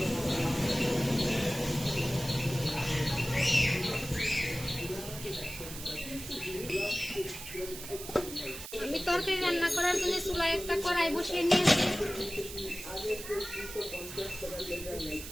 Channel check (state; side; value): noise; right; hiss, 11 dB below the sound